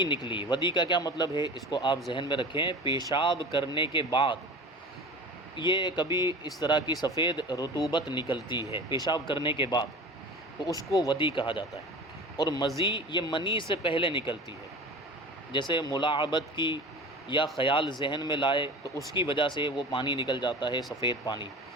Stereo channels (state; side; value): normal; both; correlation 0.35